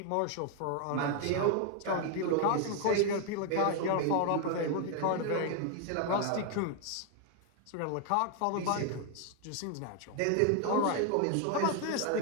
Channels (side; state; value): both; different; correlation 0.01